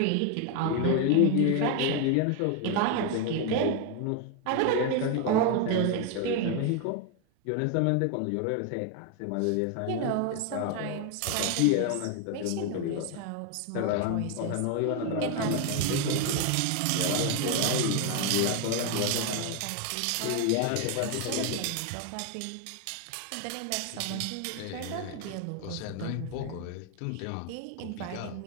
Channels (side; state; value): both; different; correlation 0.01